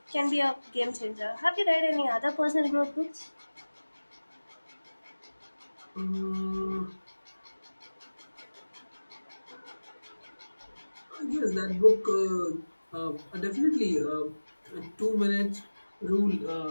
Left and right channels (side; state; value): both; inverted; correlation -1.00